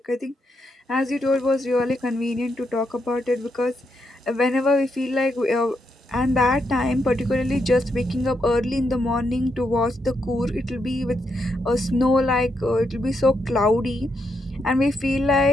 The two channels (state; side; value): normal; both; correlation 0.81